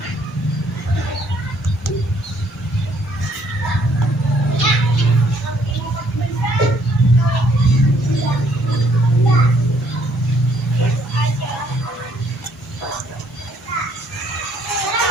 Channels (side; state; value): both; normal; correlation 0.65